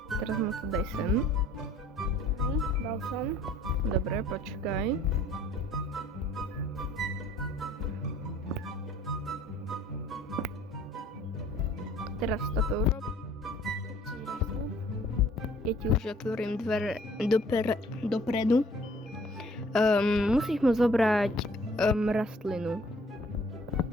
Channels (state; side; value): normal; both; correlation 0.56